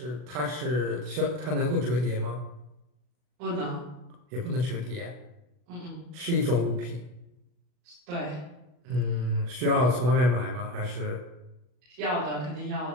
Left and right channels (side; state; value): left; late; 40 ms